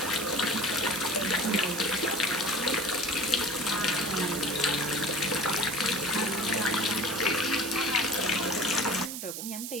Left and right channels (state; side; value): noise; right; hiss, 6 dB below the sound